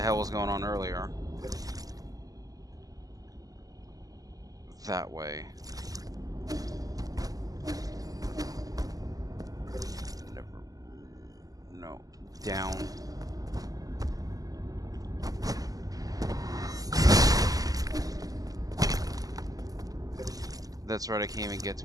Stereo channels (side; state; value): left; late; 0.17 ms